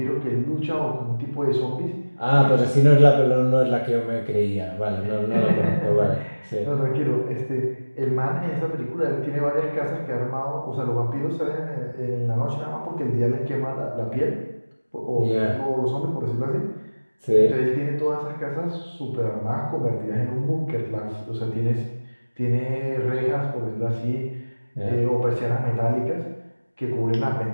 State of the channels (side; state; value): both; inverted; correlation -1.00